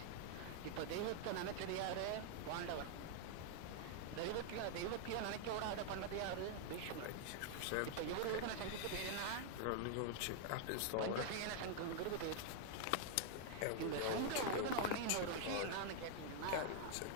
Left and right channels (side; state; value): both; different; correlation 0.00